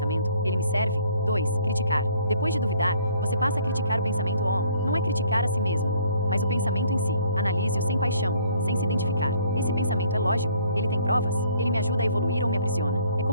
Ele me serve? 2. Criticar. Depois de duvidar, você passa a criticar o pensamento on. Não é criticar a si mesmo, mas o pensamento em si. Analise-o sem paixão, sem se identificar. Esse pensamento é lógico? Ele tem provas? Ele me ajuda a evoluir ou me aprisiona? É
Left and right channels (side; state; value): both; inverted; correlation -0.61